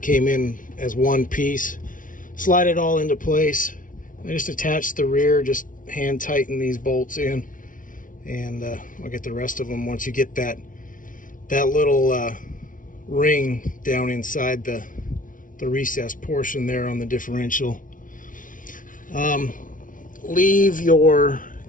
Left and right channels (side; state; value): right; late; 0.38 ms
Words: came in as one piece. Slide it all into place. I just attach the rear, just hand tighten these bolts in, and I'll get the rest of them once you get that little ring down inside the recessed portion there on the differential. Leave your